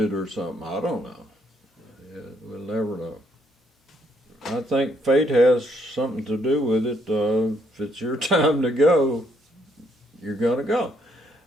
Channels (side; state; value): both; normal; correlation 0.71